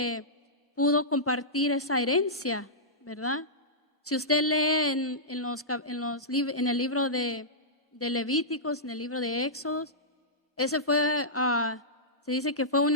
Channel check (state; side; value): normal; both; correlation -0.14